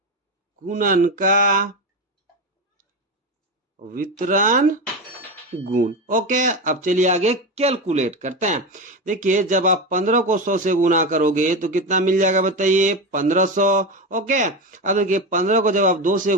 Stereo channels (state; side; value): normal; both; correlation 0.18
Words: गुणन का वितरण गुण। ओके, अब चलिए आगे कैलकुलेट करते हैं। देखिए जब आप 15 को 100 से गुना करोगे तो कितना मिल जाएगा बताइए? 1500। ओके, अब देखिए 15 को जब आप 2 से